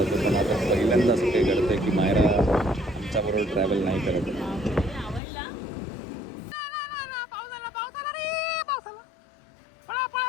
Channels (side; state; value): right; drops out; at 5.2 s